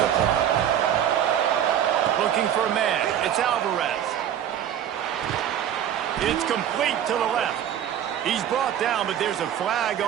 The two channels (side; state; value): left; quieter; 10.1 dB